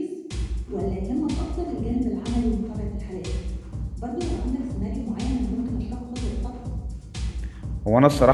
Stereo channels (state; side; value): identical; both; correlation 1.00